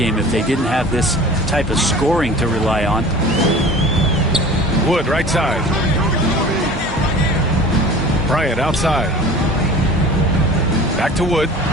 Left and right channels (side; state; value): both; normal; correlation 0.42